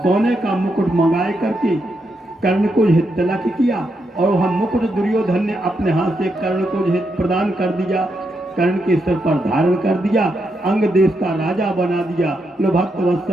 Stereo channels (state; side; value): normal; both; correlation 0.82